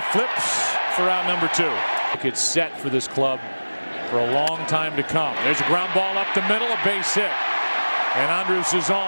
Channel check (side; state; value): both; inverted; correlation -1.00